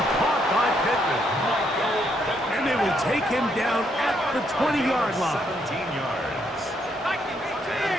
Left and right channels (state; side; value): normal; both; correlation 0.74